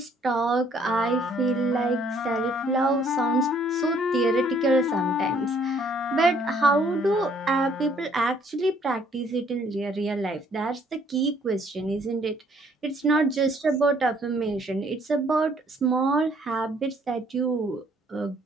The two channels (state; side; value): normal; both; correlation 0.63